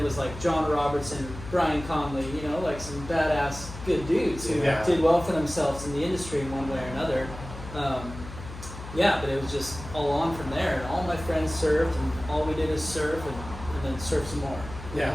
was like John Robertson, Brian Conley, like some badass good dudes who Yeah. did well for themselves in the industry in one way or another. Yeah, but it was just all on from there, and all my friends surfed, and all we did is surf, and then surf some more. Yeah.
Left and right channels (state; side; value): noise; left; hum, 12 dB below the sound